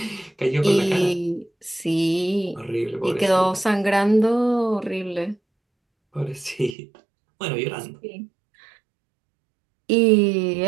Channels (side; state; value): left; drops out; at 6.8 s